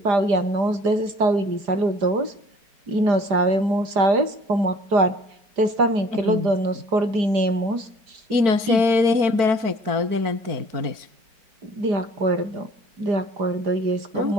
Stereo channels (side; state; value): left; late; 4.9 ms